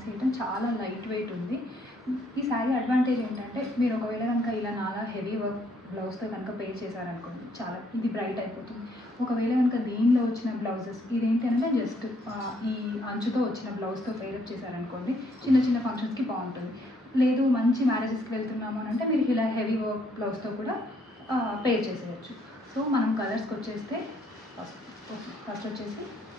ఐటమ్, చాలా లైట్ వెయిట్ ఉంది. ఈ శారీ అడ్వాంటేజ్ ఏంటంటే, మీరు ఒకవేళ కనుక ఇలా నాలా హెవీ వర్క్ బ్లౌజ్తో కనుక పే చేశారనుకోండి, చాలా ఇది బ్రైట్ అయిపోతుంది. ఒకవేళ కనుక దీనిలో వచ్చిన బ్లౌజెస్ ఇదేంటి అంటే జస్ట్ ఈ అంచుతో వచ్చిన బ్లౌజ్తో పేరప్ చేశారనుకోండి, చిన్న చిన్న ఫంక్షన్స్కి బాగుంటుంది. లేదు మంచి మ్యారేజెస్కి వెళ్తున్నాము అని అంటే మీరు ఇలా హెవీ వర్క్ బ్లౌజ్తో కూడా పేర్ చేసేయచ్చు. సో మనం కలర్స్కి వచ్చేస్తే ఫస్ట్ వచ్చేసి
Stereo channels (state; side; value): normal; both; correlation 0.69